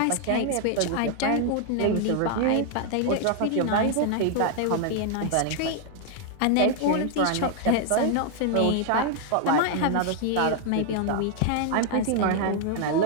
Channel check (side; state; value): both; different; correlation 0.00